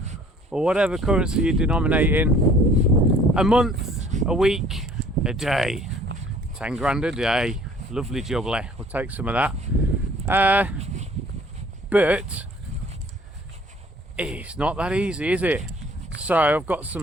or whatever currency you denominate in a month, a week, a day. 10 grand a day. Lovely jubbly. We'll take some of that. But it's not that easy, is it? So I've got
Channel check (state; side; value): normal; both; correlation 0.55